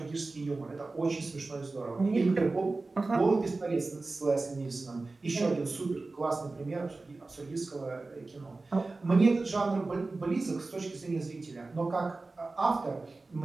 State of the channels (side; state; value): left; quieter; 3.5 dB